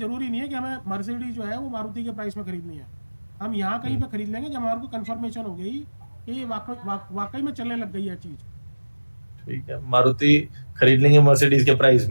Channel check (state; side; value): inverted; both; correlation -1.00